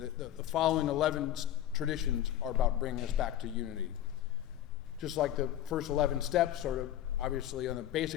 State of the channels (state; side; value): quieter; right; 11.9 dB